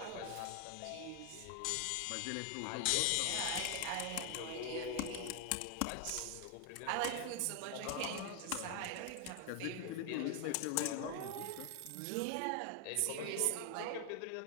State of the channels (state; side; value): different; both; correlation 0.00